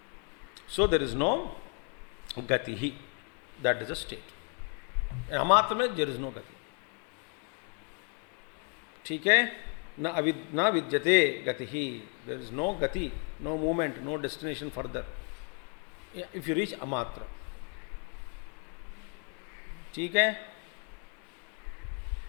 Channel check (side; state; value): right; quieter; 40.0 dB